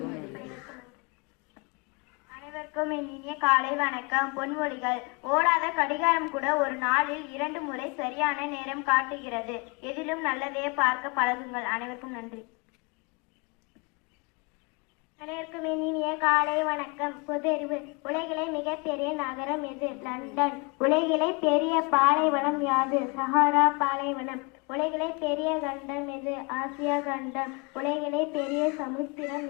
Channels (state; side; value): quieter; right; 30.4 dB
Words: அனைவருக்கும் இனிய காலை வணக்கம். பொன்மொழிகள்: ஓடாத கடிகாரம் கூட ஒரு நாளில் 2 முறை சரியான நேரம் காட்டுகிறது. எதிலும் நல்லதையே பார்க்க பழகுங்கள். அனைவருக்கும் நன்றி. அனைவருக்கும் இனிய காலை வணக்கம். பொதறிவு: உலகிலே மிகப்பெரிய நகரம் எது? லண்டன். உலகிலே பெரிய பாலைவனம் யாது? சஹாரா பாலைவனம். உலகிலே பெரிய கண்டம் எது? ஆசியா கண்டம். உலகிலே பெரிய சமுத்திரம்